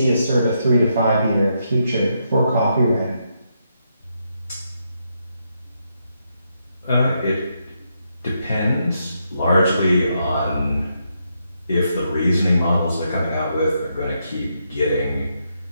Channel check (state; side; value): inverted; both; correlation -0.80